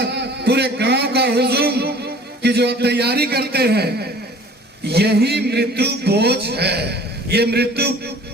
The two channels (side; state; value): both; normal; correlation 0.48